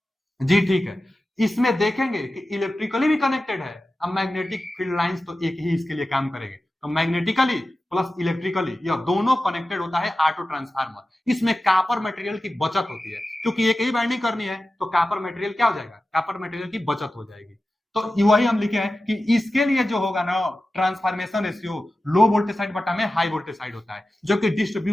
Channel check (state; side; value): normal; both; correlation 0.94